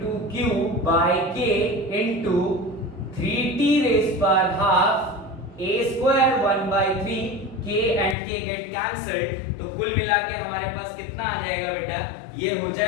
q by k into 3t raise power half a square 1/3, k and k get cancelled. तो कुल मिला के हमारे पास कितना आ जाएगा बेटा, ये हो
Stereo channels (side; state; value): right; drops out; at 8.2 s